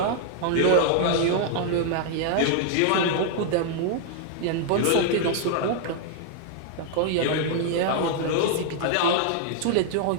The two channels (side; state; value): both; different; correlation 0.00